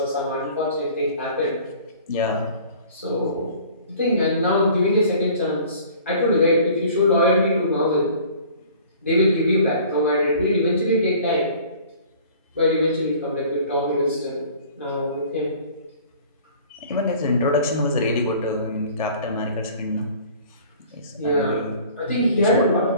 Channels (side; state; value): both; inverted; correlation -0.48